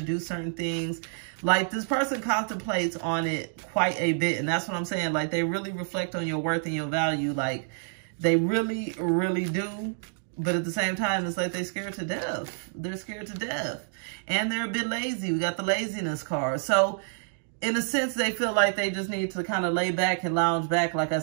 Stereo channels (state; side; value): silent; left; digital silence